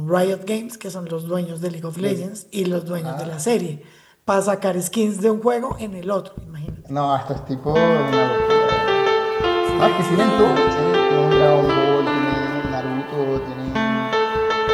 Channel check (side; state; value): both; identical; correlation 1.00